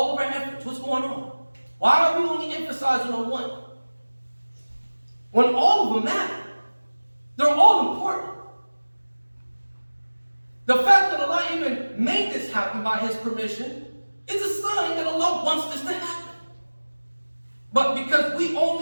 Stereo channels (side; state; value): both; inverted; correlation -1.00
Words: of our efforts. What's going on? Why are we only emphasizing on one? When all of them matter. They're all important. The fact that Allah even made this happen by His permission is a sign that Allah wants this to happen. But because we